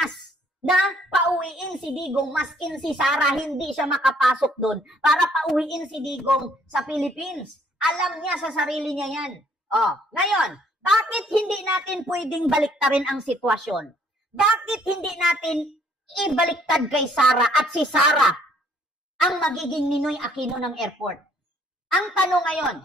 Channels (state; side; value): normal; both; correlation 0.63